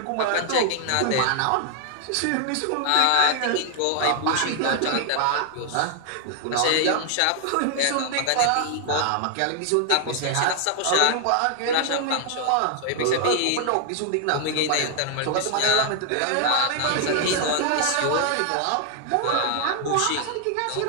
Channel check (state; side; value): different; both; correlation 0.00